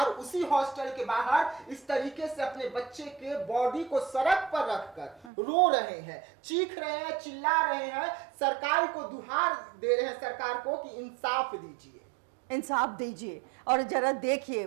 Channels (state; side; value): drops out; left; at 5.3 s